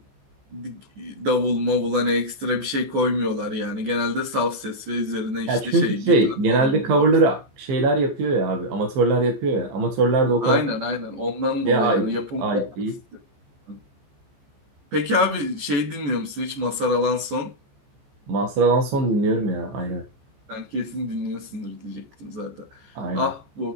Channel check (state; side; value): late; left; 14 ms